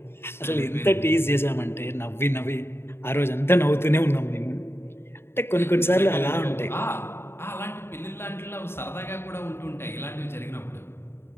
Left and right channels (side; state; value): right; late; 0.11 ms